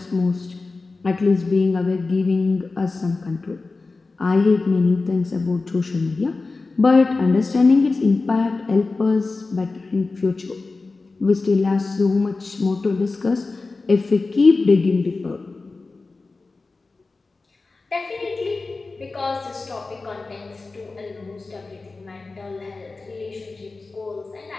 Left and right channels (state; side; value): quieter; right; 3.7 dB